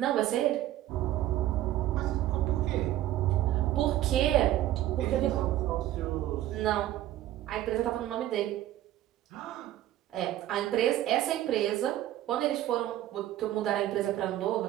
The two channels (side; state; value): left; quieter; 13.7 dB